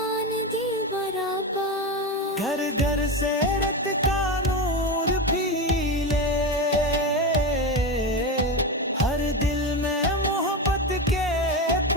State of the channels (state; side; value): normal; both; correlation 0.18